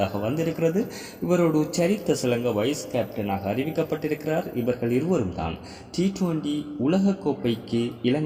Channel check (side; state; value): both; identical; correlation 1.00